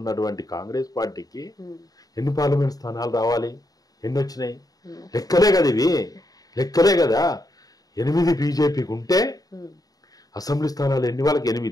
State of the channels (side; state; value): right; late; 0.18 ms